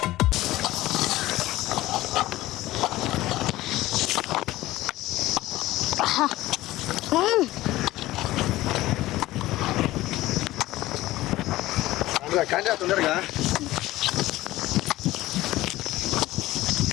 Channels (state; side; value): quieter; right; 16.9 dB